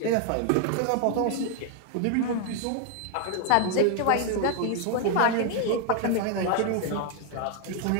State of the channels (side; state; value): both; different; correlation 0.00